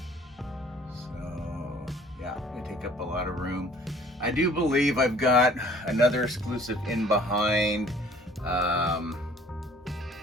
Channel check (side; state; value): both; normal; correlation 0.54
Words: So yeah, they take up a lot of room. I do believe I've got another exclusive in behind. Which